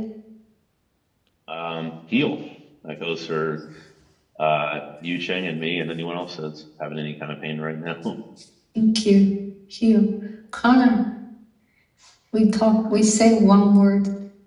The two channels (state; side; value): identical; both; correlation 1.00